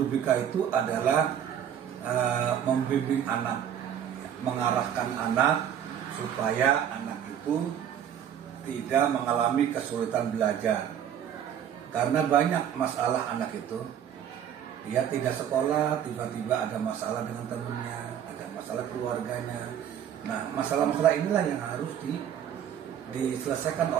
BK itu adalah membimbing anak, mengarahkan anak supaya anak itu tidak mengalami kesulitan belajar. Karena banyak masalah anak itu, dia tidak sekolah, tiba-tiba ada masalah dengan temannya, ada masalah keluarganya. Nah, masalah-masalah inilah yang harus diselesaikan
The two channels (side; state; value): left; quieter; 9.4 dB